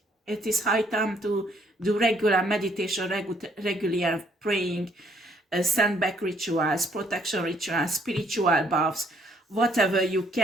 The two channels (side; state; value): both; normal; correlation 0.67